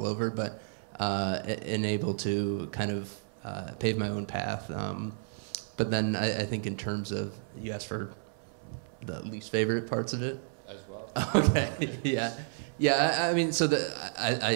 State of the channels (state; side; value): silent; left; 57 dB below the other